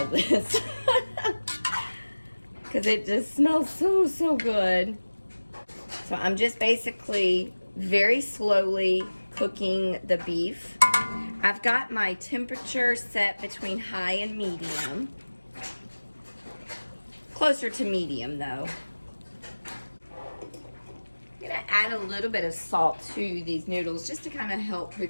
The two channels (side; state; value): both; inverted; correlation -1.00